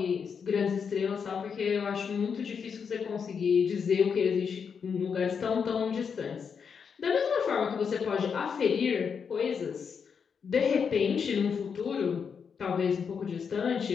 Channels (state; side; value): quieter; right; 6.4 dB